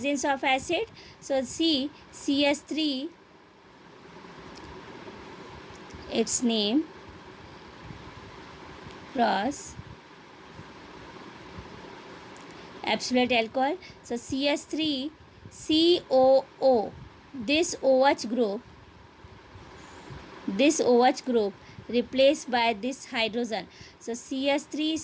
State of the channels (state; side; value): identical; both; correlation 1.00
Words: of acid, so CH3, its name cross absolute alcohol. So CH3COO, this OH group replaced by this hydrogen. So